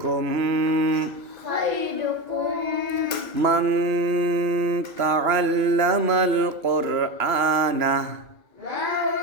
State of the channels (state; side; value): late; left; 2.9 ms